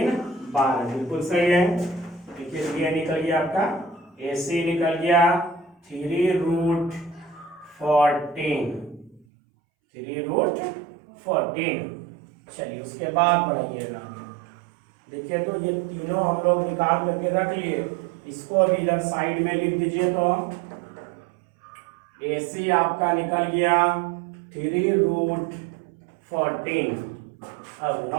12, बिल्कुल सही है। देखिए ये निकल गया आपका, एसी निकल गया 3 रूट 14। चलिए उसके बाद बढ़ाइएगा, देखिए तो ये तीनों हम लोग निकाल करके रख लिए, इसको भी इधर साइड में लिख दीजिए। तो एसी आपका निकल गया 3 रूट 14। अब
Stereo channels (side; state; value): left; drops out; at 9.2 s